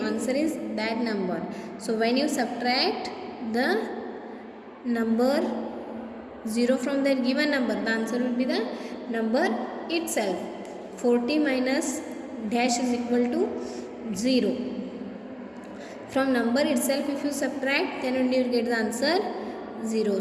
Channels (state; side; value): identical; both; correlation 1.00